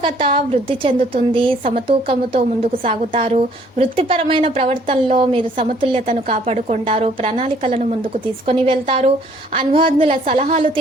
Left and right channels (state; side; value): normal; both; correlation 0.61